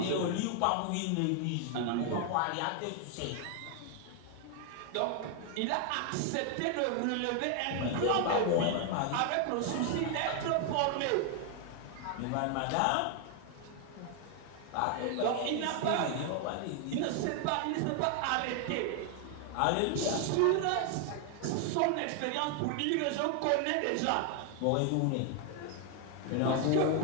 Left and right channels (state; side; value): different; both; correlation 0.00